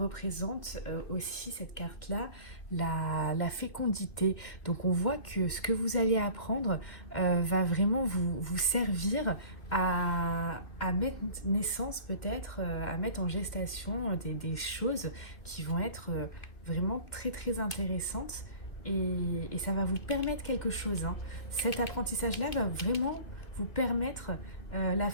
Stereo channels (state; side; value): late; right; 2.3 ms